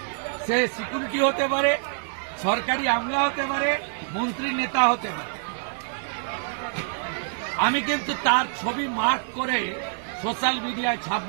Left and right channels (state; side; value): silent; left; digital silence